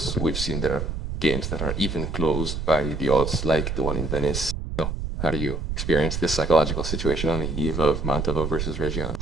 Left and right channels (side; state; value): right; noise; rumble, 3 dB below the sound